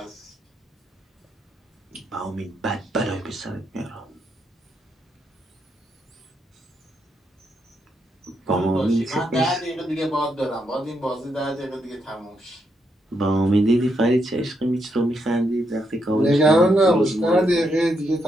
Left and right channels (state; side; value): normal; both; correlation 0.79